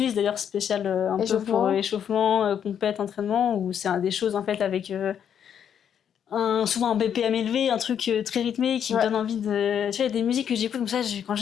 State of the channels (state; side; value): quieter; right; 8.7 dB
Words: d'ailleurs spéciale un peu pour échauffement, compète, entraînement, où c'est des choses en fait avec souvent un BPM élevé, un truc très rythmé qui me donne envie de... Tu vois, il y a des musiques que j'écoute comme ça, quand